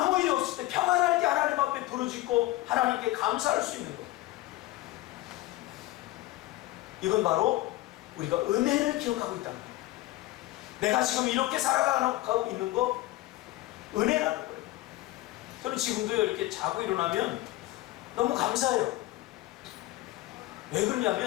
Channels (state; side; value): quieter; right; 17.6 dB